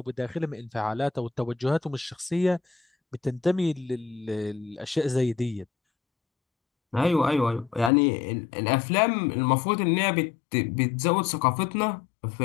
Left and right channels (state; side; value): drops out; right; at 7.9 s